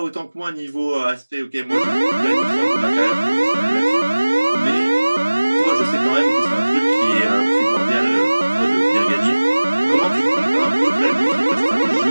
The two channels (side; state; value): both; inverted; correlation -1.00